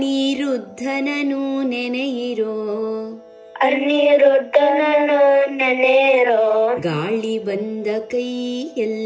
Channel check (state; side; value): identical; both; correlation 1.00